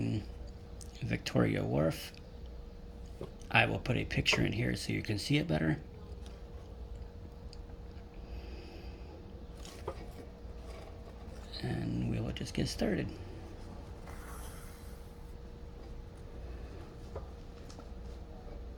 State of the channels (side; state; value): both; identical; correlation 1.00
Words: Victoria Wharf. I will put a picture in here so you can see it better. And we will just get started.